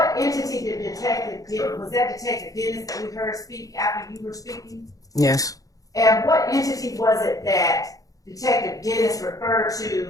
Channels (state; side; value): late; right; 0.17 ms